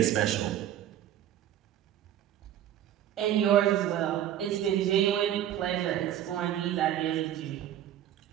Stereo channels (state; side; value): quieter; left; 11.5 dB